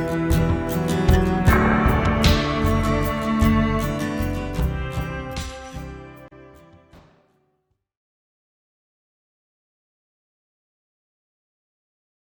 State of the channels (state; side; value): identical; both; correlation 1.00